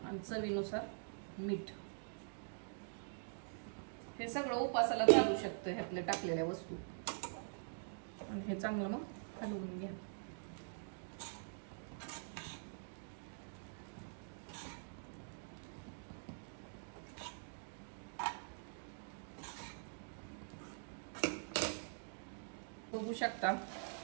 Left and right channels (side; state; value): left; silent; digital silence